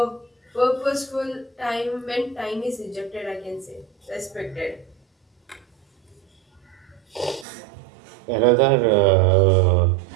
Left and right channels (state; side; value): drops out; left; at 7.5 s